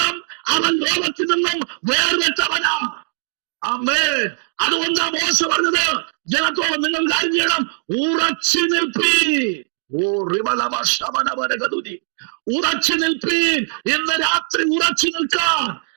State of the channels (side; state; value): left; silent; digital silence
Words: അവൻ ലോകത്തിൽ നിന്നും വേർപെട്ടവനാ. ആമേൻ. അതുകൊണ്ടാ മോശ പറഞ്ഞത് ജനത്തോട്, നിങ്ങൾ കാര്യം ചെയ്യണം, ഉറച്ചു നിൽപ്പീൻ. ഉറച്ചു നിൽപ്പീൻ. ഇന്ന് രാത്രി ഉറച്ചു നിൽക്കാൻ